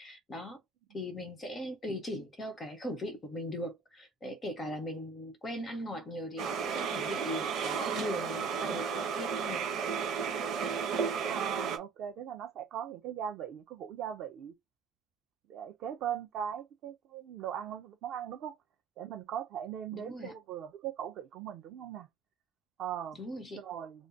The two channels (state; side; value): quieter; left; 4.7 dB